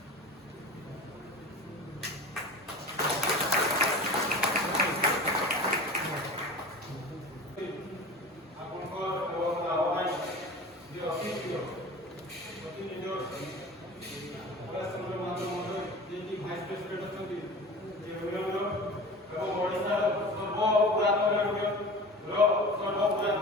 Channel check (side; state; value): both; normal; correlation 0.35